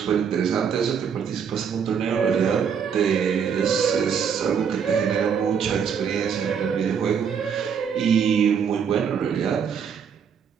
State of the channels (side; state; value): left; quieter; 7.2 dB